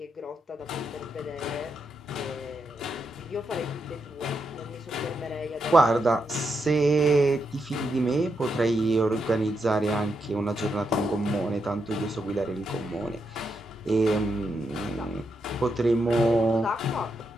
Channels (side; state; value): both; normal; correlation 0.82